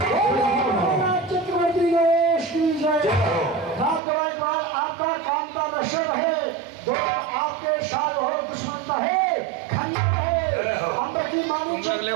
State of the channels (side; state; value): left; drops out; at 4.0 s